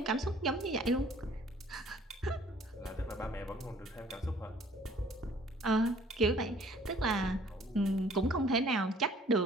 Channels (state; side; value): normal; both; correlation 0.56